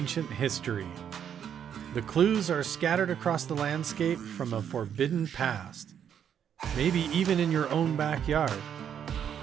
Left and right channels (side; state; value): left; quieter; 8.7 dB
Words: history. The clues are scattered across the landscape from a forbidden past, maybe even in your own backyard.